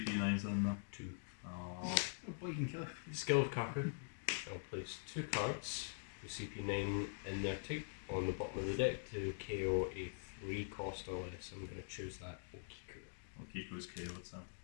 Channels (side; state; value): right; silent; digital silence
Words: in there? 2. Oh, Oh boy, you can kill it. Skill of Kaku. I'll place 2 cards with CP9 in their type on the bottom of the deck to KO a 3 cost or less. I'm going to choose that Okiku. Okiko's KO'd, so.